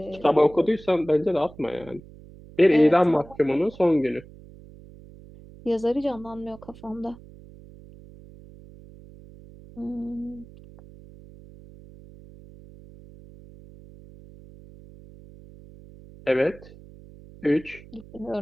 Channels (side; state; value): right; noise; hum, 20 dB below the sound